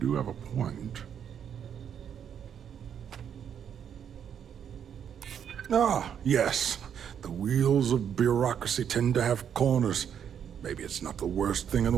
have a point. Ah, yes. The wheels of bureaucracy tend to have corners. Maybe it's not the worst thing in the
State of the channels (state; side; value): quieter; left; 8.5 dB